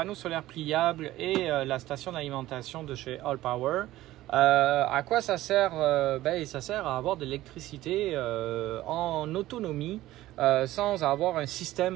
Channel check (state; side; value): quieter; left; 15.8 dB